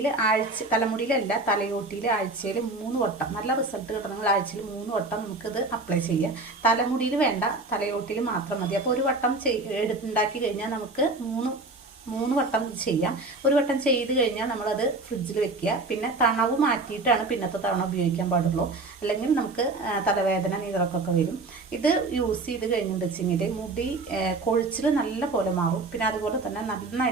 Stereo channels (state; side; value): quieter; left; 3.3 dB